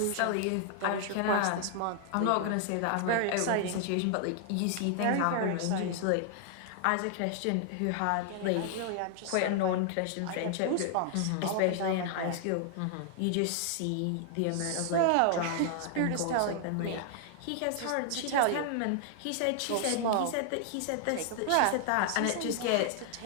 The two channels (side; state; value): both; different; correlation 0.00